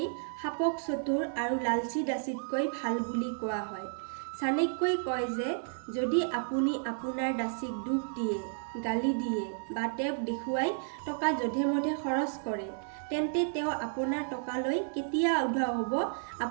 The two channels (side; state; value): left; silent; 56 dB below the other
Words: সাপক চতুৰ আৰু লালচী দাসীতকৈ ভাল বুলি কোৱা হয়। চাণক্যই কয় যে যদি আপুনি আপোনাৰ দাসীক দুখ দিয়ে, গালি দিয়ে বা তেওঁক দেখুৱাই টকা যধে-মধে খৰচ কৰে, তেন্তে তেওঁ আপোনাৰ টকালৈ কেতিয়া উধাও হ'ব